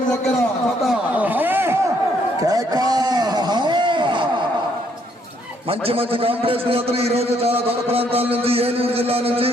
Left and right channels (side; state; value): both; normal; correlation 0.69